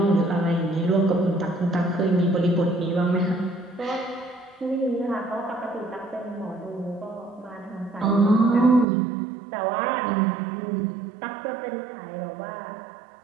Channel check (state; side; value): drops out; left; at 8.8 s